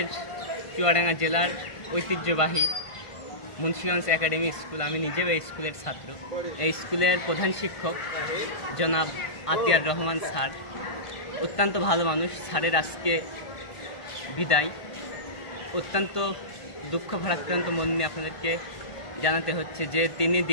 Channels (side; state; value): right; late; 1.5 ms